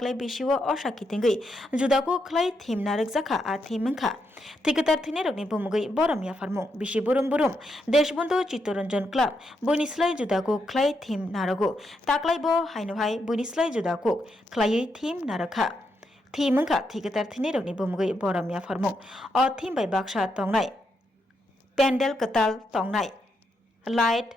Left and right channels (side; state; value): both; normal; correlation 0.81